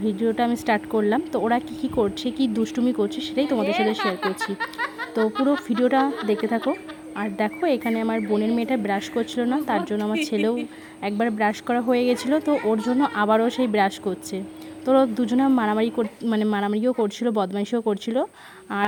ভিডিওটা আমি স্টার্ট করলাম। তো ওরা কী করছে, কী দুষ্টুমি করছে, সেটাই তোমাদের সাথে শেয়ার করছি। তো পুরো ভিডিওটা দেখতে থাকো। আর দেখো, এখানে আমার বোনের মেয়েটা ব্রাশ করছিল না, তার জন্য আমার ছেলেও একবার ব্রাশ করা হয়ে গেছিলো, তো ওর জন্য আবারও সেই ব্রাশ করছে। তো দুজনে মারামারিও করছিল, বদমাইশিও করছিল।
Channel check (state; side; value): identical; both; correlation 1.00